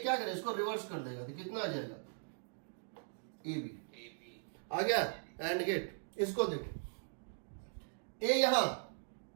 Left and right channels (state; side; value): silent; left; digital silence